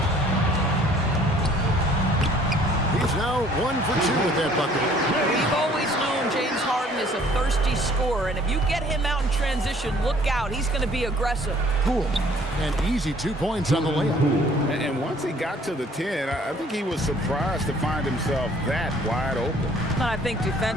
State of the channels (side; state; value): both; normal; correlation 0.57